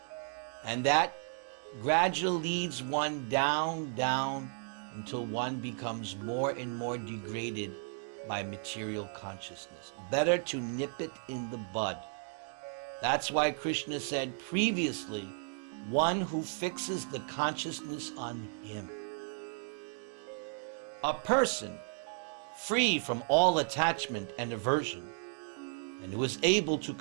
And that gradually leads one down, until one becomes more and more degraded by material consciousness. Better to nip it in the bud. That's why Krishna said previously, one who fixes the consciousness on him. A person free from all attachment and aversion, and who is able to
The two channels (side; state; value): left; silent; 55 dB below the other